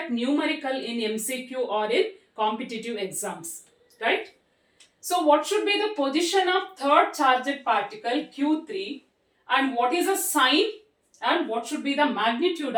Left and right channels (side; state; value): both; identical; correlation 1.00